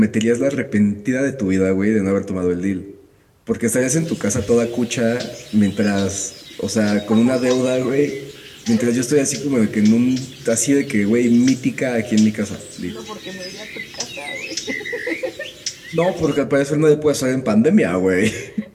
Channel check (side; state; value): both; identical; correlation 1.00